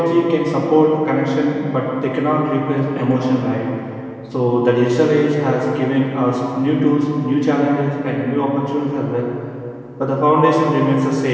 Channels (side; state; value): both; identical; correlation 1.00